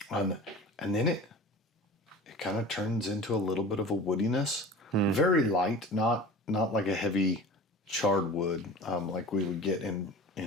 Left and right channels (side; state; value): both; normal; correlation 0.38